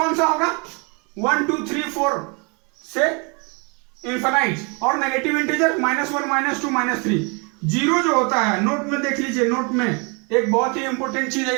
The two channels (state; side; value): quieter; left; 32.8 dB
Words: सा होगा? 1 2 3 4 से इन्फिनाइट, और नेगेटिव इंटीजर -1 -2 -3। जीरो जो होता है, नोट में देख लीजिए, नोट में एक बहुत ही इंपॉर्टेंट चीज है